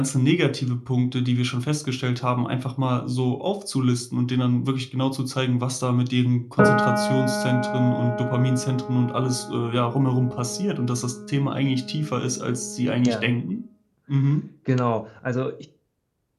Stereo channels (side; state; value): both; identical; correlation 1.00